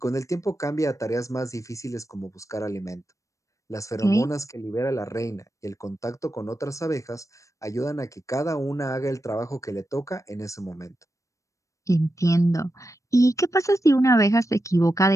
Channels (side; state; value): right; late; 0.15 ms